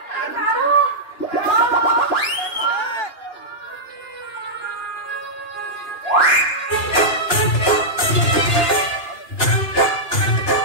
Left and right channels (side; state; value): right; late; 2.8 ms